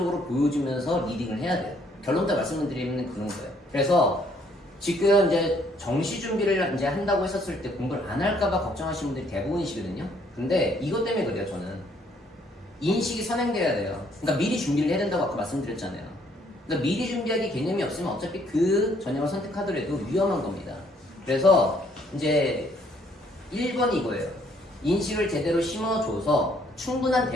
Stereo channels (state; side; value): normal; both; correlation 0.66